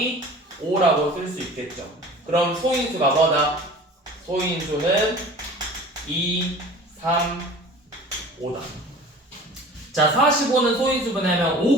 5라고 쓸 수 있겠죠. 그럼 소인수가 뭐다? 소인수는 2, 3, 5다. 자, 45는 소인수분해하면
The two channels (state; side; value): normal; both; correlation 0.42